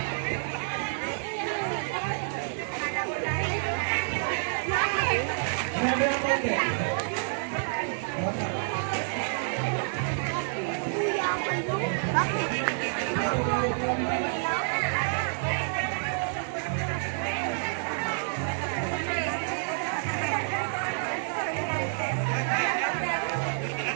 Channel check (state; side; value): silent; left; digital silence